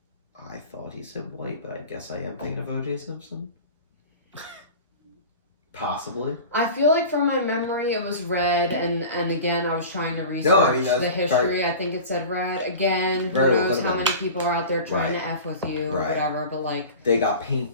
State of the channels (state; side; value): inverted; both; correlation -0.36